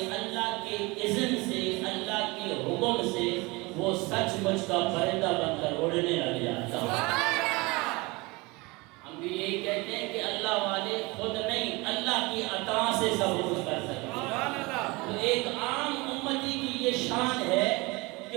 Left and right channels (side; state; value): left; quieter; 24.7 dB